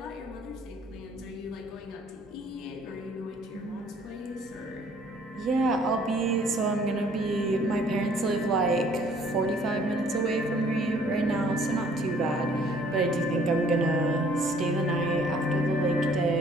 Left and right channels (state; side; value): normal; both; correlation 0.58